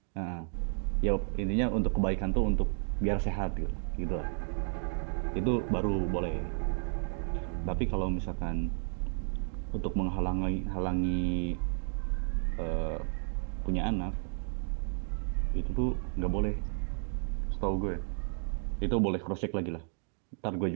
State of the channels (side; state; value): left; silent; 56 dB below the other